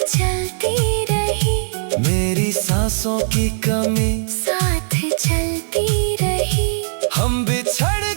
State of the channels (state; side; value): silent; left; digital silence